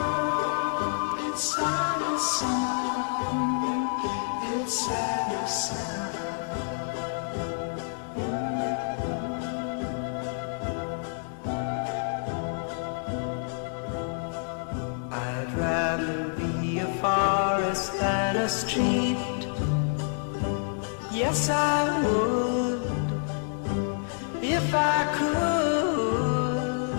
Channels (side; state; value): right; silent; digital silence